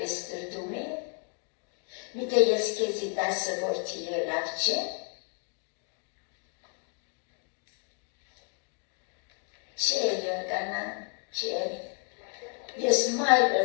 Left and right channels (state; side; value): quieter; right; 38.3 dB